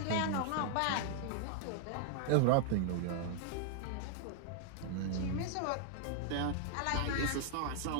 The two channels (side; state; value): both; different; correlation 0.00